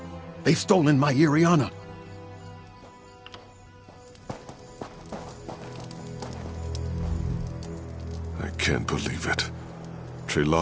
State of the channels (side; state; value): both; identical; correlation 1.00